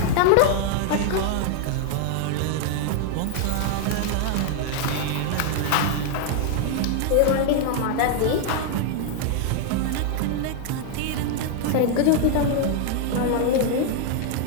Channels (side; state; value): both; different; correlation 0.00